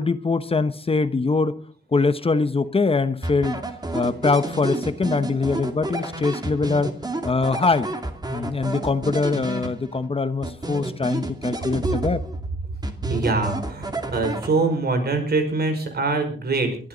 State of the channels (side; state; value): both; normal; correlation 0.62